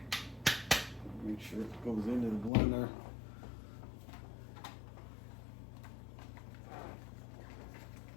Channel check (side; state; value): right; drops out; at 2.5 s